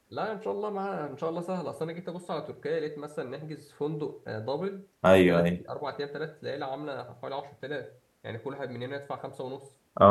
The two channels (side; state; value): both; identical; correlation 1.00